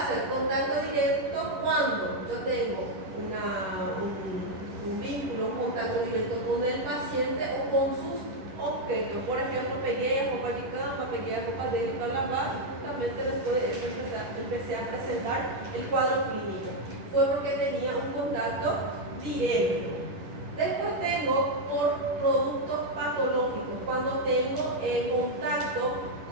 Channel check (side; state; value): left; late; 11 ms